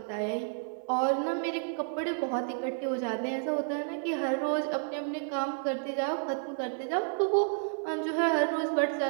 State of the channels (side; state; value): left; silent; 57 dB below the other